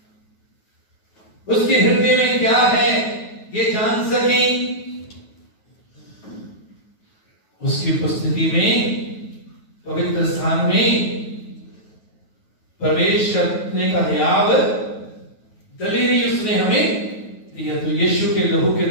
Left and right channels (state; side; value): late; right; 9.4 ms